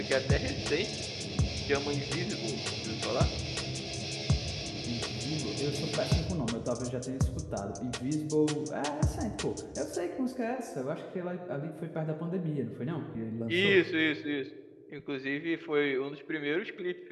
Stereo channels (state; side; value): identical; both; correlation 1.00